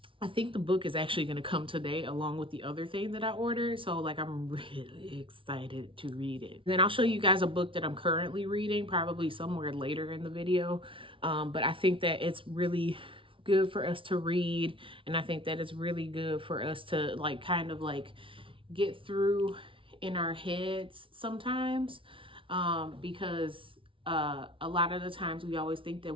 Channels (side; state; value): left; late; 0.25 ms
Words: I think the book is actually going to come today along with the other thing that I ordered. So like I'm really excited to read it. Then I'll show you guys a book that I'm currently reading, probably somewhere later in the video. But I think that it's really good for us to read. And I think that it's really good for us to like kind of like get through in our heads sometimes, because a lot of the times we always think that